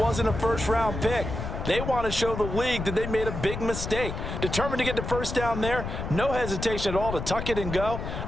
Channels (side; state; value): left; noise; rumble, 5 dB below the sound